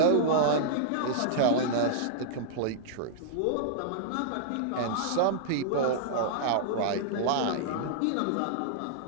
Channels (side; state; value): both; different; correlation -0.02